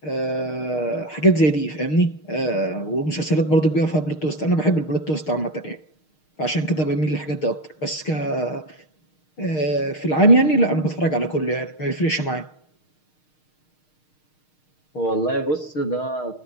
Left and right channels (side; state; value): right; late; 6.5 ms